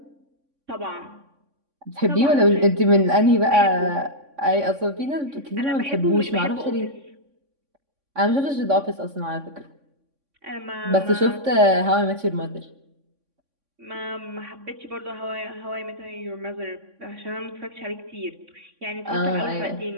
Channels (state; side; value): late; left; 3.6 ms